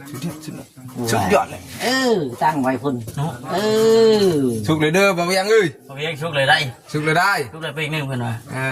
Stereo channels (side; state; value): both; identical; correlation 1.00